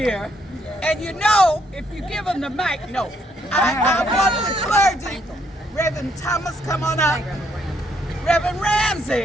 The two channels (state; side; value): normal; both; correlation 0.71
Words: and you know, if you give them the mic, I want the clergy. Reverend Thomas, come on up. Reverend